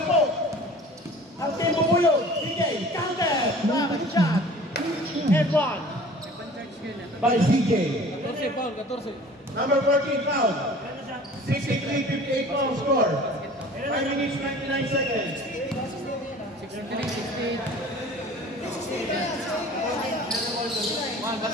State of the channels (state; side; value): normal; both; correlation 0.45